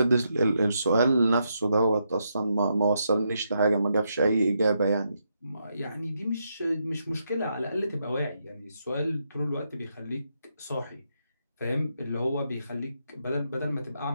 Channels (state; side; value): inverted; both; correlation -0.81